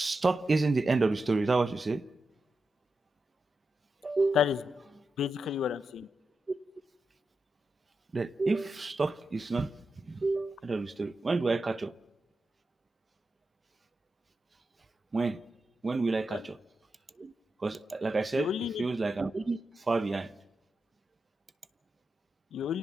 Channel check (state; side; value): normal; both; correlation 0.88